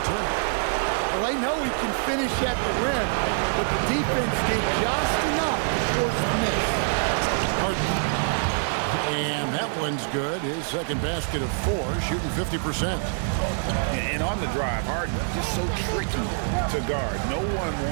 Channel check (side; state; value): left; silent; digital silence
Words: Turner. Well, they know he can finish at the rim, but the defense did just enough to force the miss. Harden. And that one's good. His second basket of 4, shooting 50%. And on the drive, Harden just so tricky to guard. No one